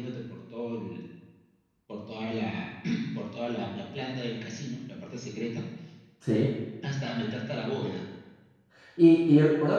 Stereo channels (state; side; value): identical; both; correlation 1.00